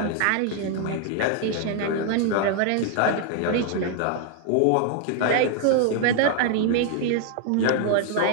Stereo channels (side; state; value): both; different; correlation 0.00